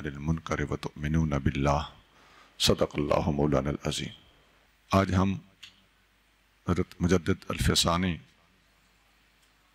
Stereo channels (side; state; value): both; identical; correlation 1.00